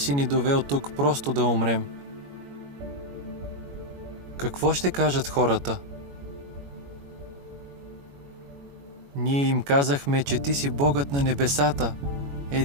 ни довел тук просто да умрем? Какво ще кажат хората? Ние им казахме, че ти си Богът на небесата,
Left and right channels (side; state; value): left; late; 21 ms